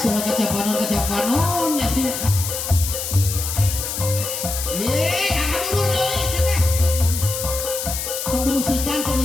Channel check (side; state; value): left; noise; hiss, 4 dB below the sound